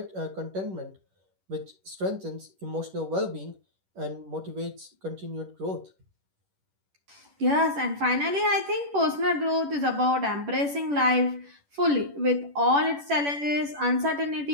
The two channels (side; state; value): left; late; 10 ms